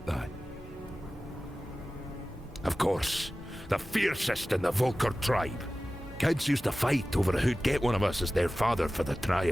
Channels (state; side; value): normal; both; correlation 0.96